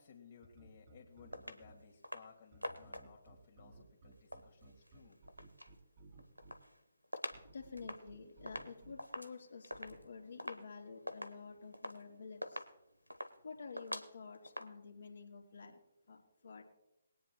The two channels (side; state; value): both; inverted; correlation -0.92